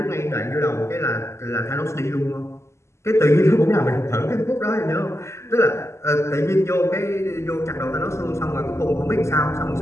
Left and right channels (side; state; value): right; late; 0.13 ms